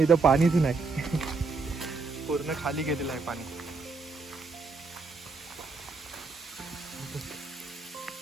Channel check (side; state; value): left; quieter; 4.1 dB